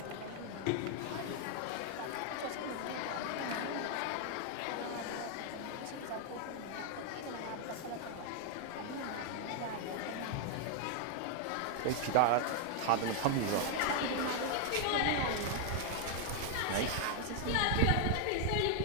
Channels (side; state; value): both; different; correlation 0.00